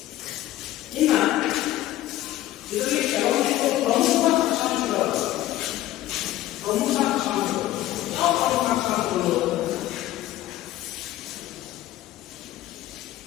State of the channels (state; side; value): quieter; right; 14.7 dB